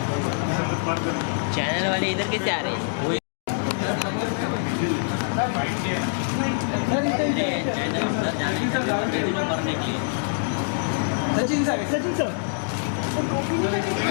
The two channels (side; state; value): right; silent; digital silence